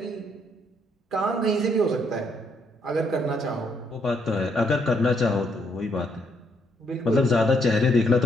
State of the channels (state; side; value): normal; both; correlation 0.73